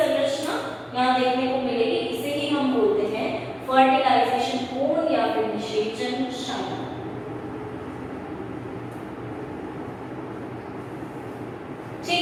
यहाँ देखने को मिलेगी, इसे ही हम बोलते हैं फर्टिलाइजेशन कोन या फिर निषेचन शंकु।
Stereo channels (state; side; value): identical; both; correlation 1.00